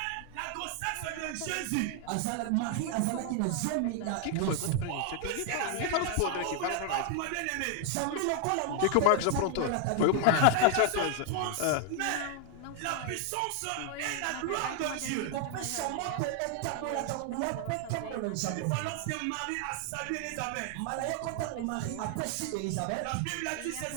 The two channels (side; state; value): both; different; correlation 0.00